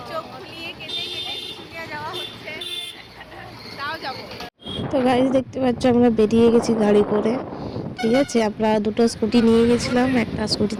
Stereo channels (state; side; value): identical; both; correlation 1.00